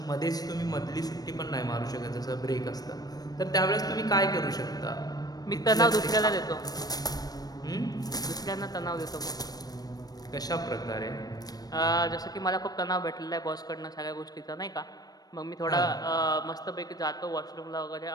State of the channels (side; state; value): right; late; 0.19 ms